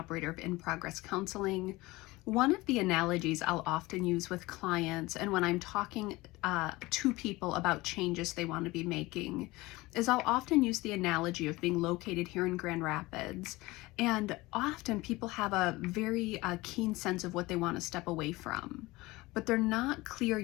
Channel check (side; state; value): right; quieter; 20.8 dB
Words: of In Progress Counseling. One of the analogies I'll often use with clients and when I'm talking to people about changes they want to be making is I'll often use the analogy of being located here in Grand Rapids. And often people have a very keen sense of what they want to step away from, but they're not clear